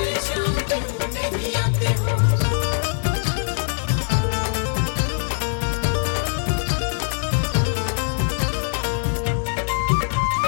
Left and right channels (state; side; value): silent; right; digital silence